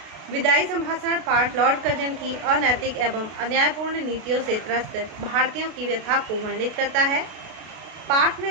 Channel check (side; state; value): left; late; 32 ms